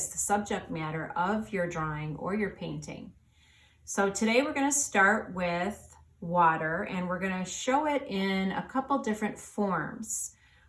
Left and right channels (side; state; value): both; identical; correlation 1.00